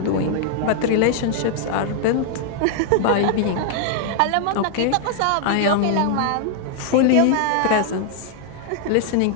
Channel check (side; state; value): both; different; correlation 0.00